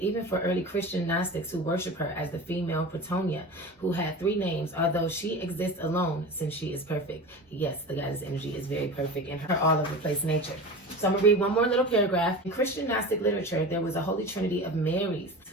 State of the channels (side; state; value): both; normal; correlation 0.32